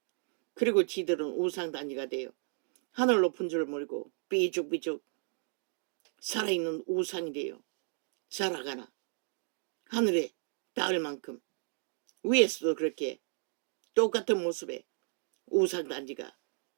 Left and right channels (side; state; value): left; silent; 55 dB below the other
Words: 그리고 지들은 우상단지가 되어 하늘 높은 줄 모르고 삐죽삐죽 살아있는 우상이 되어 살아가나 하늘에 닿을 만큼 위에서도 그렇게 똑같은 모습의 우상단지가